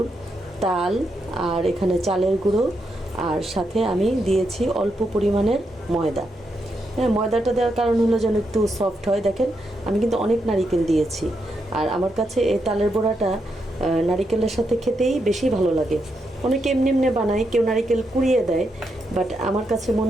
তাল, আর এখানে চালের গুঁড়ো, আর সাথে আমি দিয়েছি অল্প পরিমাণের ময়দা। হ্যাঁ, ময়দাটা দেওয়ার কারণ হলো যেন একটু সফট হয়। দেখেন, আমি কিন্তু অনেক নারকেল দিয়েছি। আর আমার কাছে এই তালের বড়াটা নারকেলের সাথে খেতেই বেশি ভালো লাগে। অনেকে এমনি এমনি বানায়, কেউ নারকেল কুড়িয়ে দেয়, বাট আমার কাছে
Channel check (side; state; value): both; normal; correlation 0.82